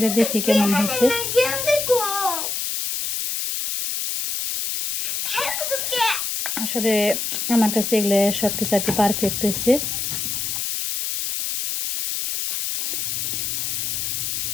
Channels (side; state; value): left; noise; hiss, 2 dB below the sound